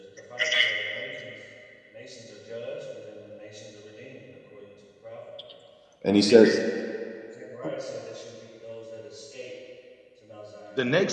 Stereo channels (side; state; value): both; identical; correlation 1.00